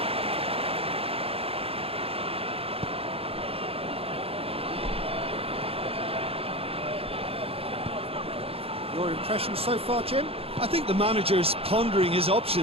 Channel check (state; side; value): late; left; 0.28 ms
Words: Your impression so far, Jim? I think the manager's pondering his